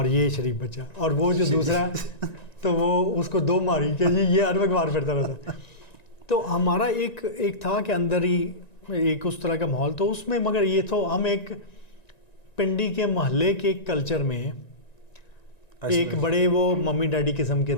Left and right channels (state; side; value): late; right; 1.9 ms